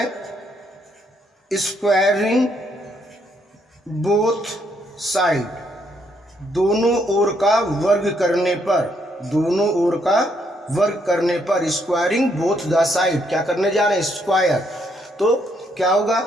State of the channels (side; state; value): both; normal; correlation 0.73